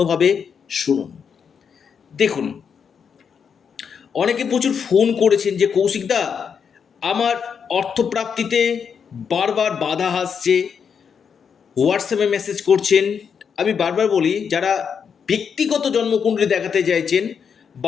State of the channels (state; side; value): quieter; right; 6.8 dB